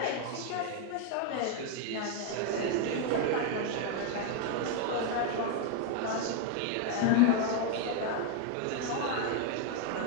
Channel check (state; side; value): different; both; correlation 0.00